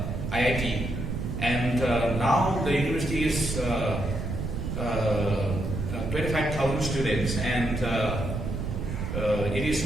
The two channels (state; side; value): noise; right; rumble, 4 dB below the sound